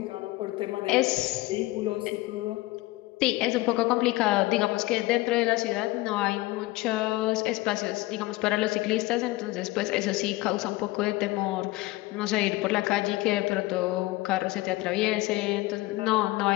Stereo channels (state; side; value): quieter; right; 19.6 dB